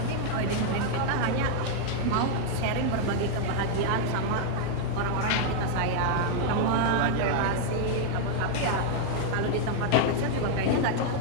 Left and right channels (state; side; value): different; both; correlation 0.00